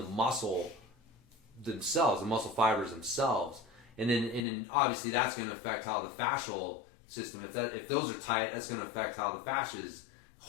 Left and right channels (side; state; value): right; drops out; at 4.4 s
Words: muscle themselves, the muscle fibers themselves, and then obviously that's going to affect how the fascial system, if those are tight, that's going to affect how the fascia is